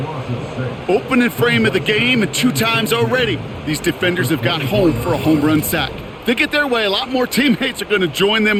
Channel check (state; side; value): identical; both; correlation 1.00